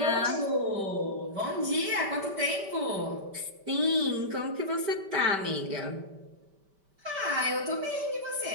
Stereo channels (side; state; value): left; late; 5.1 ms